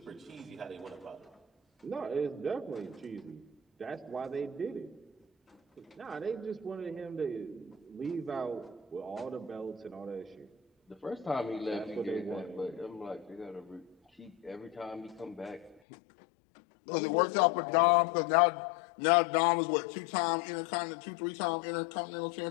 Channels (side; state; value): right; drops out; at 15.8 s